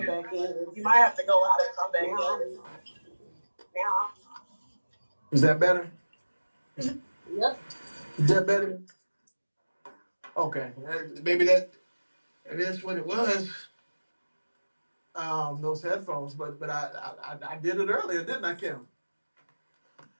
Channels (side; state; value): both; inverted; correlation -1.00